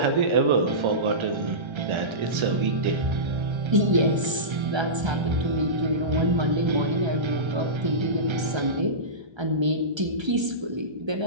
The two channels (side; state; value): left; late; 1.3 ms